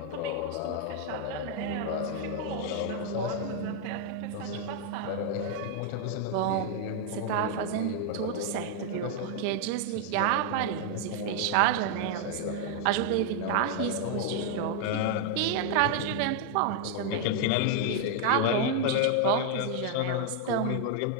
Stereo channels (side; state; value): both; different; correlation 0.00